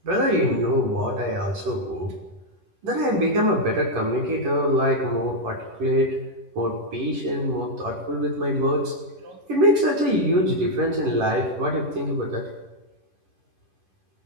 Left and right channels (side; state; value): left; late; 11 ms